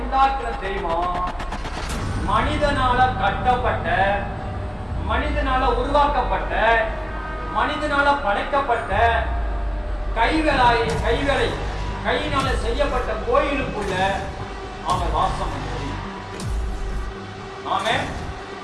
உண்டாக்கின தெய்வம் மனிதனால கட்டப்பட்ட, மனிதனால உருவாக்கப்பட்ட, மனிதனால படைக்கப்பட்ட கையினால செய்யப்பட்ட கோயிலுக்குள்ள அவன் வாசம் பண்ணுவது. ஆமே,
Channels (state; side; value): identical; both; correlation 1.00